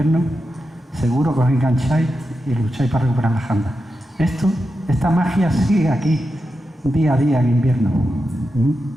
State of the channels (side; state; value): both; normal; correlation 0.89